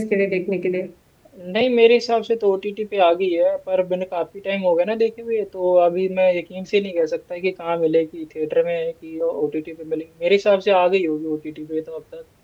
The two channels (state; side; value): identical; both; correlation 1.00